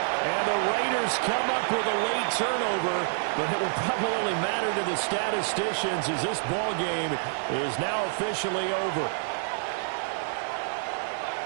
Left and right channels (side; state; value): left; silent; 59 dB below the other